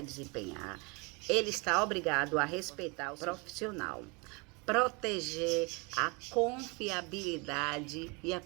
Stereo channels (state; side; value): quieter; left; 29.4 dB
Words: desempenhar, ele está obrigado a respeitar o profissional, proteger a confiabilidade